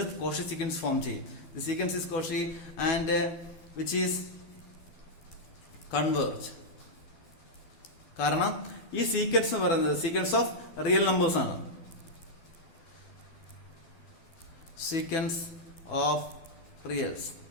Cauchy sequence form ചെയ്യും. The sequence is Cauchy and which is converge. കാരണം ഈ സീക്വൻസ് എന്ന് പറയുന്നത് സീക്വൻസ് ഓഫ് റിയൽ നമ്പേഴ്സ് ആണ്. സീക്വൻസ് ഓഫ്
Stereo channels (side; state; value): right; late; 12 ms